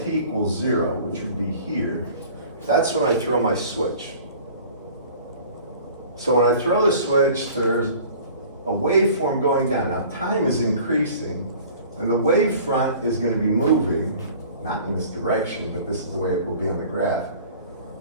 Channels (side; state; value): both; inverted; correlation -0.47